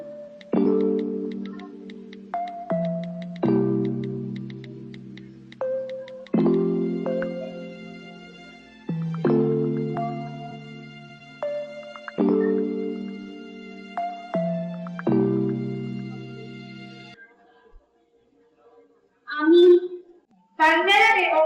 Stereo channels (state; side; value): identical; both; correlation 1.00